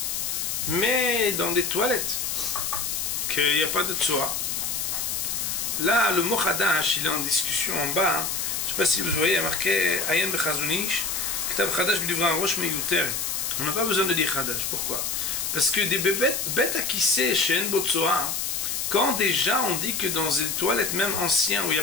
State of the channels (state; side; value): noise; left; hiss, 1 dB below the sound